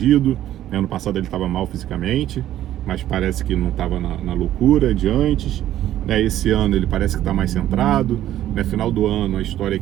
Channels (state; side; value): quieter; left; 12.6 dB